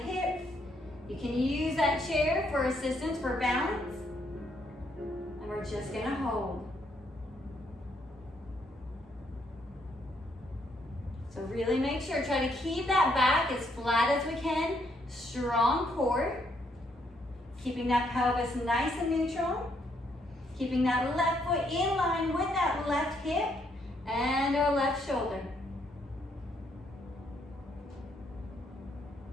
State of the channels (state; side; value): normal; both; correlation 0.73